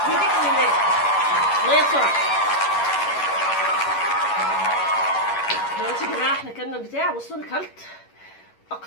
بيديك الماء. ميه بسرعه. دلوقتي يا جماعه احنا كلنا البتاع. بصوا انا كلت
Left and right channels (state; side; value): late; right; 11 ms